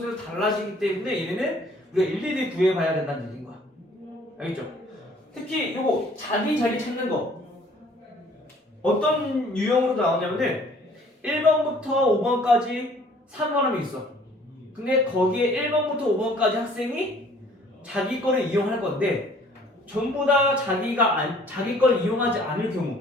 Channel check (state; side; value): normal; both; correlation 0.56